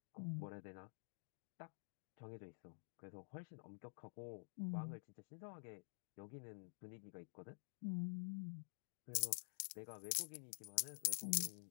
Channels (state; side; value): silent; right; digital silence